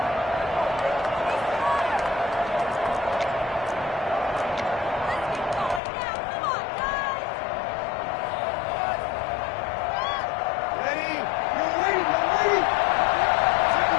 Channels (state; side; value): drops out; right; at 5.8 s